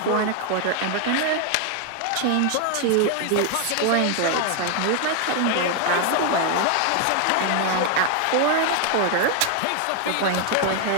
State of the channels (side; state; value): both; different; correlation 0.00